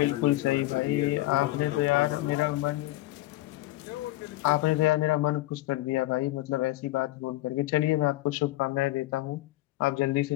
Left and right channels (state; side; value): quieter; right; 17.5 dB